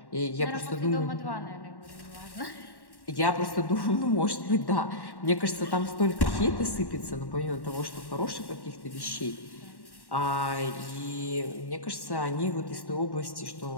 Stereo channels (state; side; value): late; right; 1.1 ms